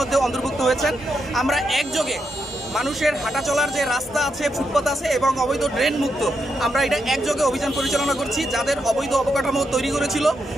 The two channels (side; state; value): both; normal; correlation 0.82